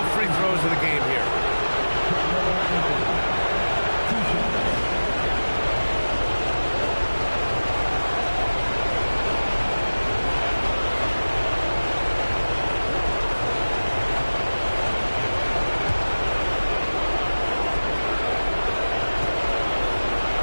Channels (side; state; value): both; inverted; correlation -1.00